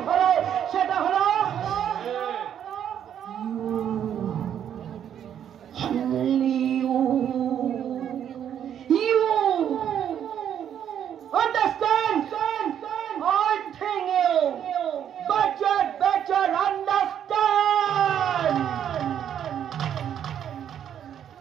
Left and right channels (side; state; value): left; quieter; 9.5 dB